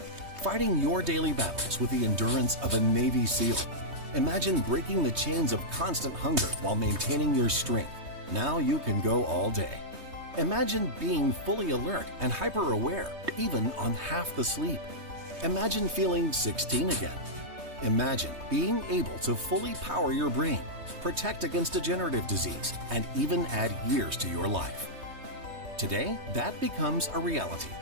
fighting your daily battles with the endurance of a Navy SEAL. Imagine breaking the chains of constant hunger while maintaining your strength. Now you can go all day. Imagine being fully alert and hyper-aware, even on half the sleep. Imagine feeling 16 again. Imagine being able to fully power your brain, protect against degenerative disease, and even add years to your life. Today, that becomes a reality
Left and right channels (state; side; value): late; left; 3.2 ms